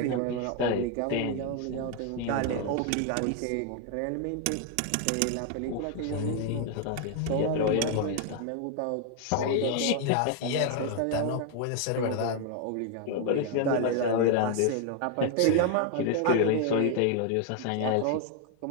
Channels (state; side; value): different; both; correlation 0.00